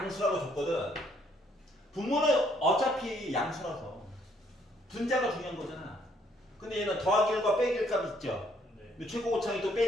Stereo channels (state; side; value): normal; both; correlation 0.67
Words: 줬거든. 분모는 어차피 양수라서 분자가 중요한 거잖아. 근데 얘는 더하기 1과 빼기 1 값 있죠. 네. 최고 고창이 또